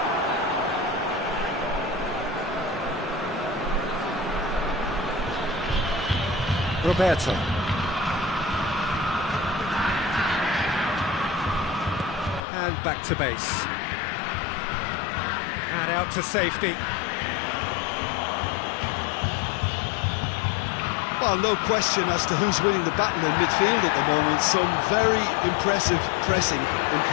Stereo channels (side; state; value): right; drops out; at 12.4 s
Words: Roberto. And back to base. And out to safety. Well, no question as to who's winning the battle in midfield at the moment. Some very impressive pressing in